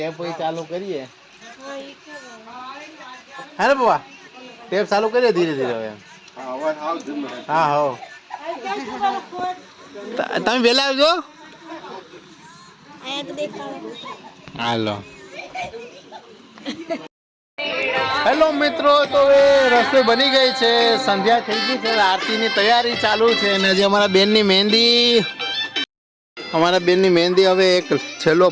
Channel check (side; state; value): both; identical; correlation 1.00